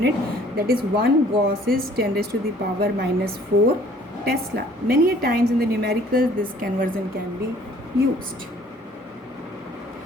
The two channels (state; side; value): normal; both; correlation 0.56